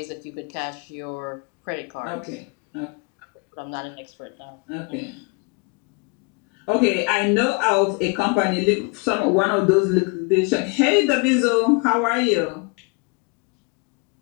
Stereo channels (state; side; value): quieter; right; 30.5 dB